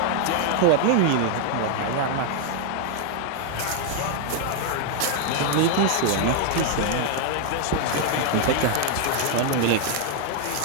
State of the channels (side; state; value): both; different; correlation 0.00